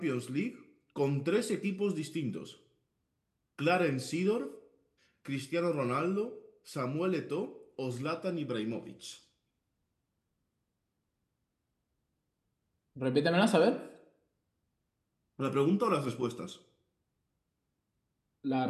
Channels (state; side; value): identical; both; correlation 1.00